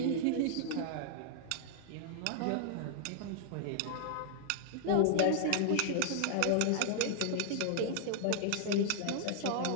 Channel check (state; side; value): different; both; correlation 0.00